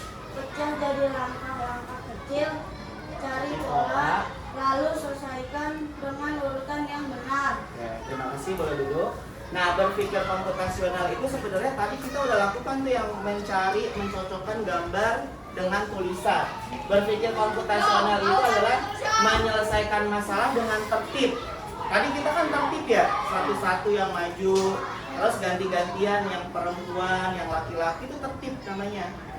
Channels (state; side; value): identical; both; correlation 1.00